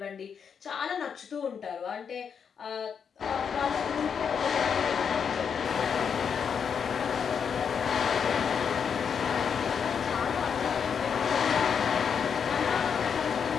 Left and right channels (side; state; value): right; quieter; 6.9 dB